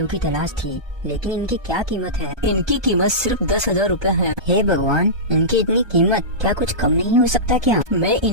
की तलाश थी, लेकिन इनकी क्या कीमत है? इनकी कीमत सिर्फ 10,000 रूपए है। हे भगवान, इनकी इतनी कीमत, क्या कुछ कम नहीं हो सकता क्या? मैं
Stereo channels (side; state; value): left; late; 1.3 ms